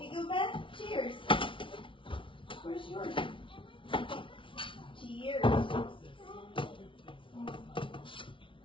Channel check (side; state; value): right; late; 0.25 ms